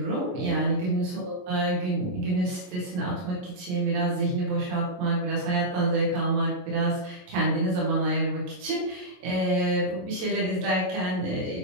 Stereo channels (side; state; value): left; late; 23 ms